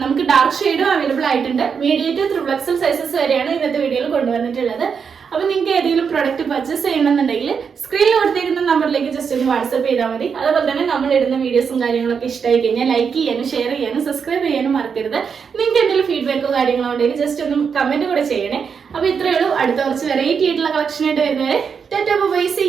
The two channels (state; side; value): quieter; left; 6.3 dB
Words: നമുക്ക് ഡാർക്ക് ഷെയ്ഡും അവൈലബിൾ ആയിട്ടുണ്ട്. Medium two triple XL sizes വരെയാണ് ഇന്നത്തെ വീഡിയോയിൽ കൊണ്ടുവന്നിട്ടുള്ളത്. അപ്പൊ നിങ്ങൾക്ക് ഏതെങ്കിലും പ്രൊഡക്റ്റ് പർച്ചേസ് ചെയ്യണമെന്നുണ്ടെങ്കിൽ സ്ക്രീനിൽ കൊടുത്തിരിക്കുന്ന നമ്പറിലേക്ക് ജസ്റ്റ് ഒന്ന് വാട്സ്ആപ്പ് ചെയ്താൽ മതി. അതുപോലെ തന്നെ നമ്മൾ ഇടുന്ന വീഡിയോസും കാര്യങ്ങളൊക്കെ ഇഷ്ടമായി കഴിഞ്ഞാൽ ലൈക്ക് ചെയ്യാനും ഷെയർ ചെയ്യാനും സബ്സ്ക്രൈബ് ചെയ്യാനും മറക്കരുത്. നിങ്ങൾക്ക് എന്തെങ്കിലും ഫീഡ്ബാക്കോ കാര്യങ്ങളോ ഉണ്ടെങ്കിൽ ജസ്റ്റ് ഒന്ന് കമന്റ് കൂടെ ചെയ്യണേ. അപ്പൊ ഇത്രയേ ഉള്ളൂ. അടുത്ത കുറച്ച് വെറൈറ്റി ആയിട്ടുള്ള കളക്ഷൻ ആയിട്ട് വരുന്നവരെ tata bye, see